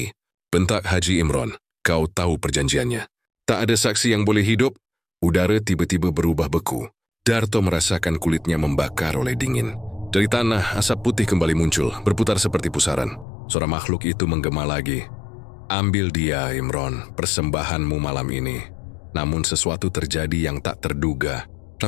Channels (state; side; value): drops out; right; at 13.2 s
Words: Bentak Haji Imron. Kau tahu perjanjiannya. Tak ada saksi yang boleh hidup. Udara tiba-tiba berubah beku. Darto merasakan kulitnya membakar oleh dingin. Dari tanah, asap putih kembali muncul, berputar seperti pusaran. Suara makhluk itu menggema lagi. Ambil dia, Imron, persembahanmu malam ini. Namun sesuatu terjadi yang tak terduga.